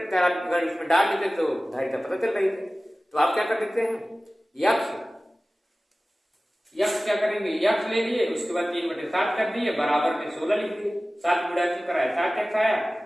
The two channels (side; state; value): both; normal; correlation 0.97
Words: अगर इसमें डाल देते तो धारिता पता चल रही थी, तो आप क्या कर देते हैं, यक्ष क्या करेंगे, यक्ष ले लिए, उसके बाद 3/7 कर दिए, बराबर में 16 लिख दिए। 7 गुणा इसमें कराया 7x आया,